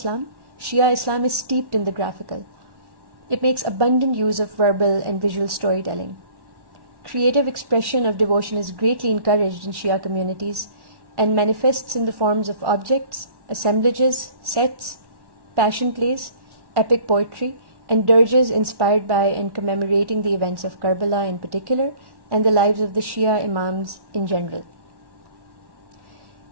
Shia Islam is steeped in the graphical. It makes abundant use of verbal and visual storytelling. Creative expression of devotion is greatly encouraged in Shia communities and manifests in the forms of objects, assemblages, sets, passion plays, epic poetry, and dirges inspired by and commemorating the events of Karbala in particular and the lives of the Shia Imams in general.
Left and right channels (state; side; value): late; left; 1.1 ms